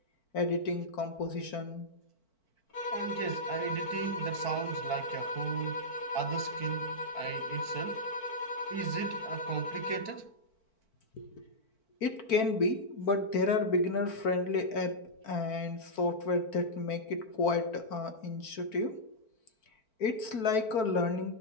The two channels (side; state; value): right; late; 4.5 ms